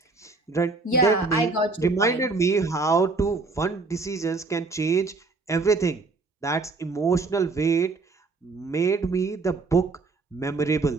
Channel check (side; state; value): left; quieter; 3.8 dB